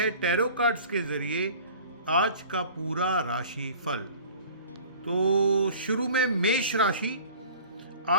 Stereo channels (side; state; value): both; inverted; correlation -0.44